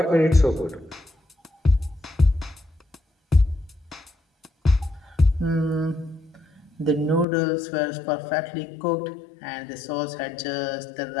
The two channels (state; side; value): drops out; right; at 7.2 s